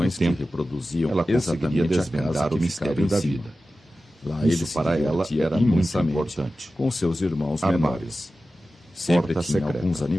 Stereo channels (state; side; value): normal; both; correlation 0.94